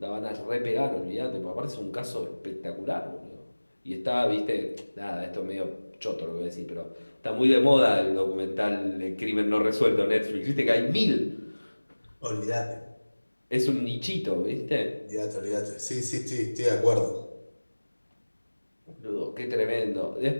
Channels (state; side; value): inverted; both; correlation -1.00